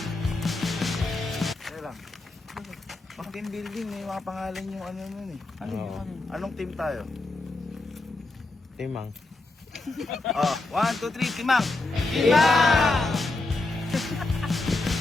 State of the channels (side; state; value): right; quieter; 3.1 dB